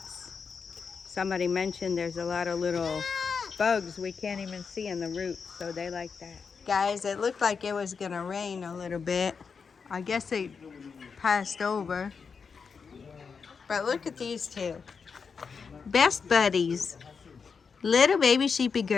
Somebody mentioned there's a lot of little bugs we can't even see in the roots, so they like that. Guys, it looked like it was gonna rain a little bit. I guess it passed over. But look at these two. Best buddies. Little baby sheepy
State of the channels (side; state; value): right; quieter; 5.6 dB